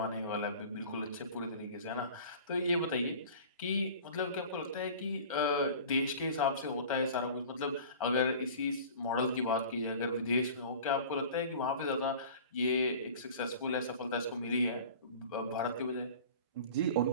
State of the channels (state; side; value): inverted; both; correlation -0.42